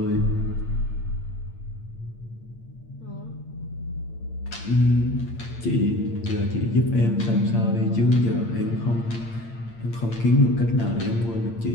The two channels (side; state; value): right; late; 8.7 ms